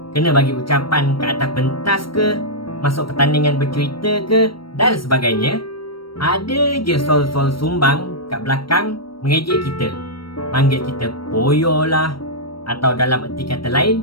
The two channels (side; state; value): right; late; 0.74 ms